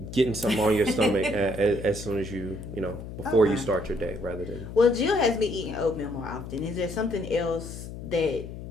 Getting something on your stomach as soon as before you start your day, rather than. Well, Jill has me eating oatmeal more often. Is there something else that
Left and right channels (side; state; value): left; noise; hum, 10 dB below the sound